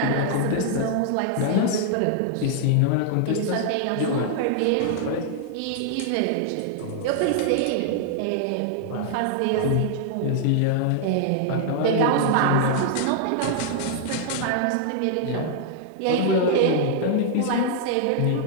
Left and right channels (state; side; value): different; both; correlation -0.01